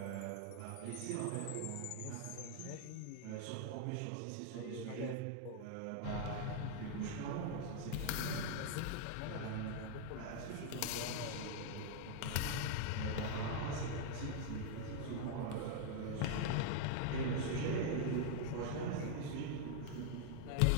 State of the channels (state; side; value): different; both; correlation 0.00